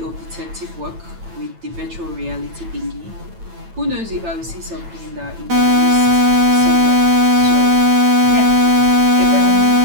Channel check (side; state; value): left; late; 9.0 ms